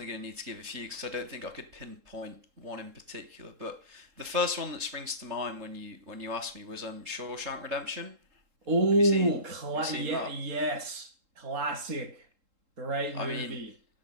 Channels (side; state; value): left; late; 3.7 ms